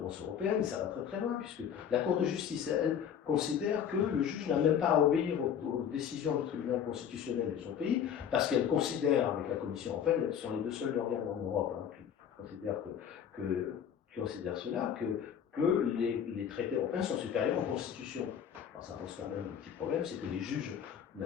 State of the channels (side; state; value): right; quieter; 8.5 dB